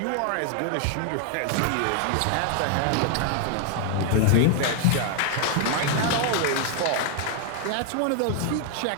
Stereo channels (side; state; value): both; different; correlation 0.00